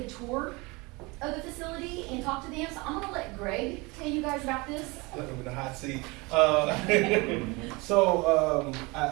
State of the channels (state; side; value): quieter; left; 25.5 dB